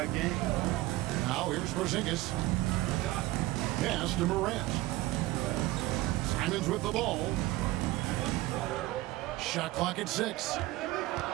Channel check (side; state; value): left; quieter; 18.3 dB